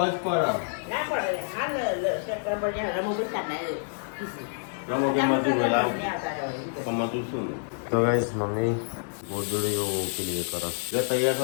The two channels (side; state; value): right; silent; 57 dB below the other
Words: તો ગાઈસ મમ્મી ગોદડીઓ પેલી કરે જે તૈયાર